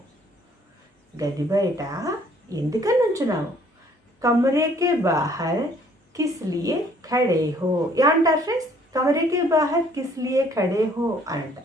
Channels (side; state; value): both; normal; correlation 0.60